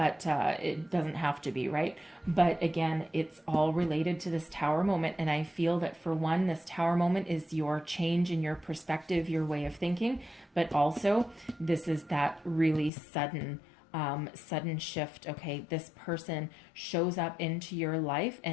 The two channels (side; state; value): right; drops out; at 12.9 s